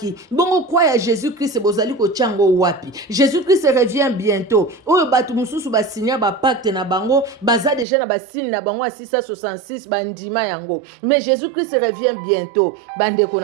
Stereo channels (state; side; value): drops out; left; at 7.9 s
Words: bongo croix ya Jésus-Christ bozali ko chango wapi Jésus-Christ revient bientôt oyo batu mususu basinya ba pacte na bango baza déjà na basine na bango 666 bandima yango mais Jésus-Christ revient bientôt bandeko